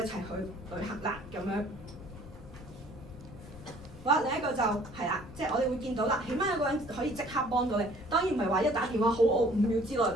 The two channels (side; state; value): left; noise; rumble, 17 dB below the sound